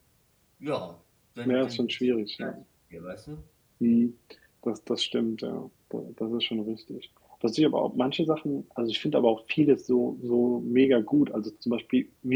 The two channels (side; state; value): both; identical; correlation 1.00